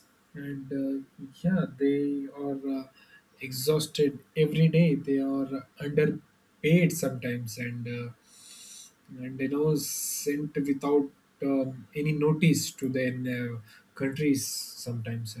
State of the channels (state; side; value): identical; both; correlation 1.00